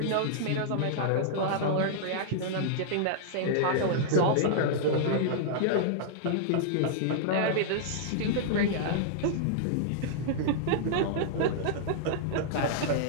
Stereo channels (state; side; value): different; both; correlation -0.02